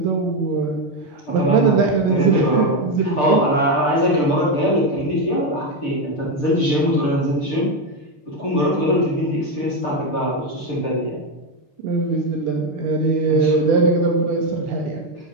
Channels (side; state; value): right; late; 6.7 ms